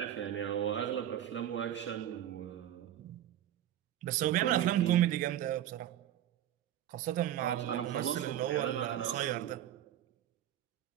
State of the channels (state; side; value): quieter; left; 11.7 dB